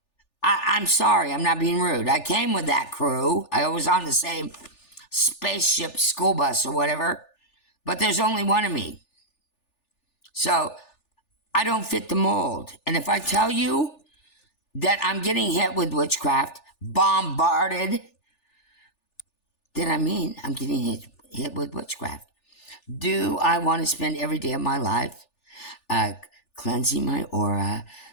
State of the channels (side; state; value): right; late; 3.4 ms